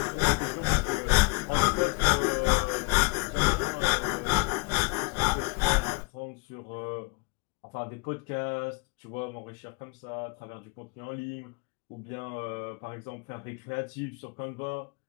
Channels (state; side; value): quieter; right; 30.0 dB